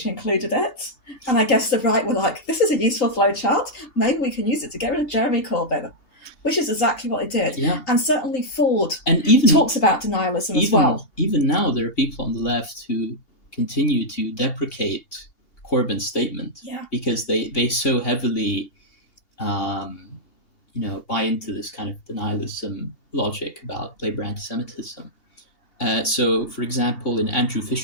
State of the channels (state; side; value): late; right; 2.8 ms